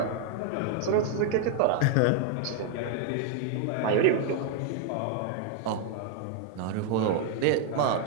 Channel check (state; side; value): different; both; correlation 0.00